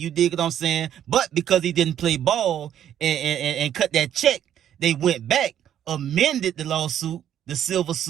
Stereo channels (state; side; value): quieter; left; 10.3 dB